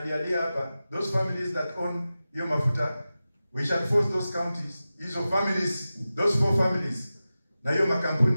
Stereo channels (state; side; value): inverted; both; correlation -0.94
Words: hapa. Those families that own hiyo mafuta, we shall force those counties, hizo families, those 4 families, na hiyo